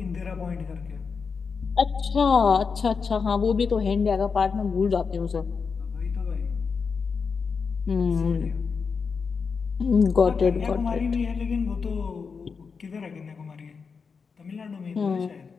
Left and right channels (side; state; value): right; quieter; 5.4 dB